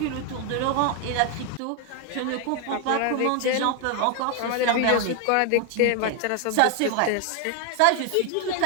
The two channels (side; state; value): both; different; correlation 0.00